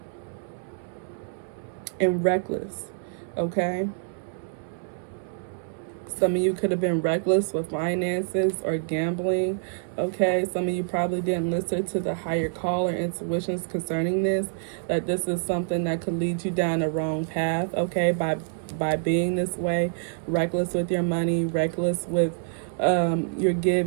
reckless. Okay. Some of you could have been reckless with finances or gambling. Okay, some of you probably didn't listen to the higher call or intuitions concerning this, that this is something that could lead you down the wrong path, okay, by being this way, reckless with your money, reckless with your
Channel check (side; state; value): left; silent; 60 dB below the other